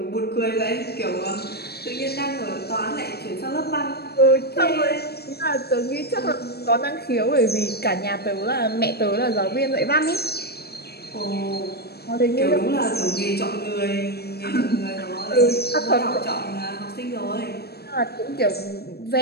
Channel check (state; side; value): late; right; 0.47 ms